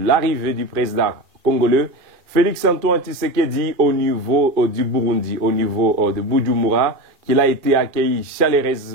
du président congolais Félix-Antoine Tshisekedi au niveau du Burundi, au niveau de Bujumbura, qu'il a été accueilli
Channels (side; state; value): left; late; 2.4 ms